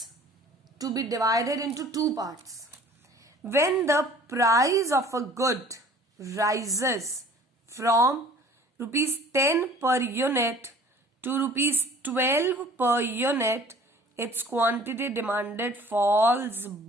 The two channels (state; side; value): normal; both; correlation 0.50